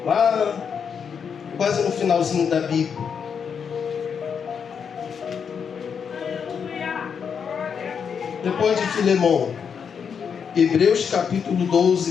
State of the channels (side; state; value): right; quieter; 6.8 dB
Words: Lá, quase no finalzinho da Bíblia. Depois de Filemão, Hebreus capítulo